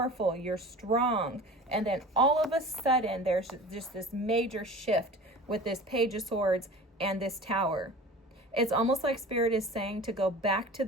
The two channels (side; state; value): both; normal; correlation 0.38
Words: You're strong. And then all of a sudden, there's just this major shift with this Page of Swords and this Tower. It's almost like spirit is saying to go back to